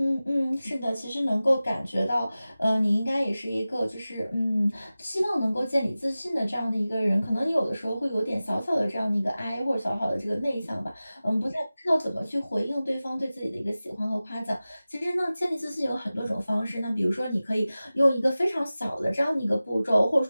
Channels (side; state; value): both; inverted; correlation -0.96